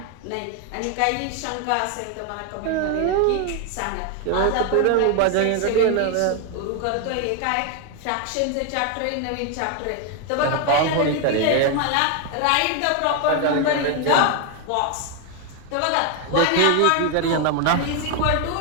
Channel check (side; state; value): both; different; correlation 0.01